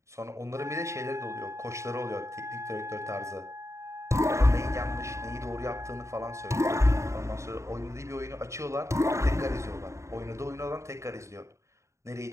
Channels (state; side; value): late; left; 0.14 ms